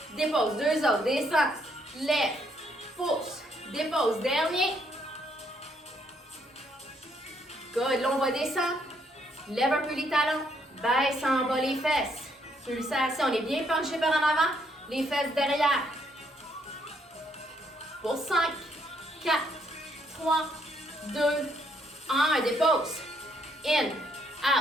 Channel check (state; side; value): normal; both; correlation 0.71